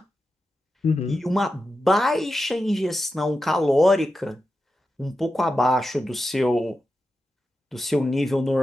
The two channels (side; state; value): both; normal; correlation 0.90